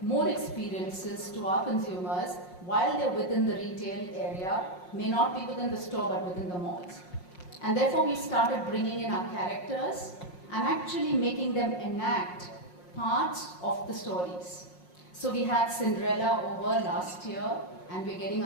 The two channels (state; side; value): late; right; 5.6 ms